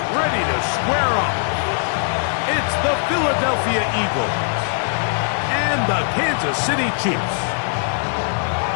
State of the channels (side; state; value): right; silent; 65 dB below the other